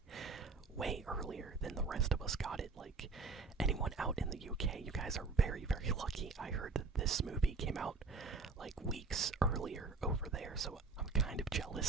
way earlier than the rest of us got it. Like, anyone out in the UK, you guys are very, very lucky. I heard that this movie came out like weeks earlier over there, so I'm kind of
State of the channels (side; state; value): left; quieter; 4.2 dB